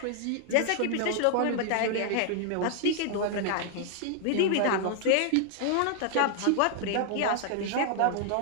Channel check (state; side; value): different; both; correlation 0.00